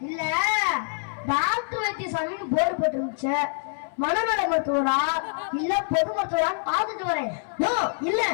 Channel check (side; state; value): right; silent; 61 dB below the other